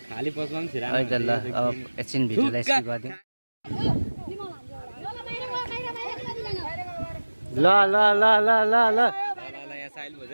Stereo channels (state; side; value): inverted; both; correlation -1.00